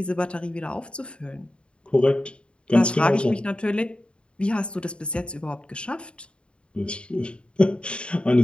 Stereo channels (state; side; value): late; right; 0.055 ms